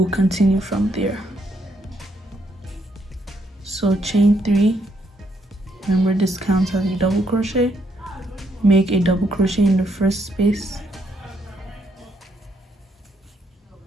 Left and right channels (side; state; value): both; normal; correlation 0.74